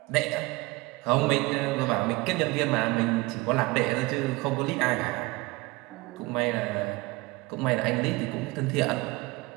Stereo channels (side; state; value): left; quieter; 22.6 dB